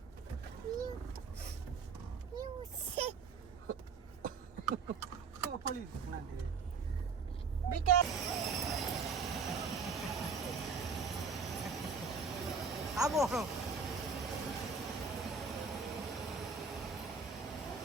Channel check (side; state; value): left; quieter; 5.0 dB